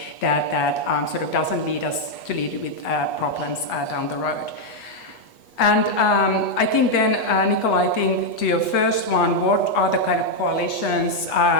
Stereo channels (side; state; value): right; late; 8.3 ms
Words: that sort of doesn't lead us to lead with problems down the road. And I think then, Nicola, I think to your first one, what are the kind of coalitions?